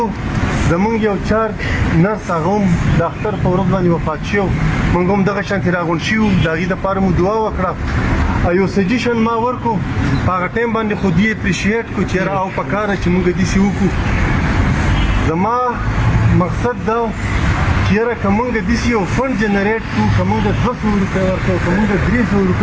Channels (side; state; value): both; identical; correlation 1.00